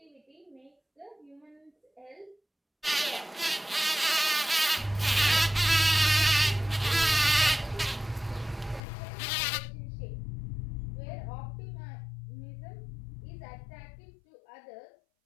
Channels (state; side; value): drops out; right; at 8.8 s